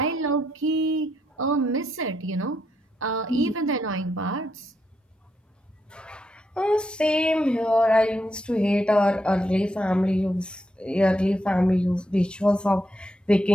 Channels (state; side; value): normal; both; correlation 0.80